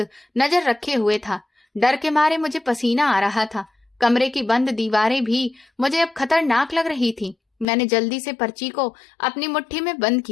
नजर रखे हुए था। डर के मारे मुझे पसीना आ रहा था। कमरे की बंद दीवारें भी मुझे अब खतरनाक लग रही थी। मैंने जल्दी से पर्ची को अपनी मुट्ठी में बंद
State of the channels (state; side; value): drops out; right; at 7.7 s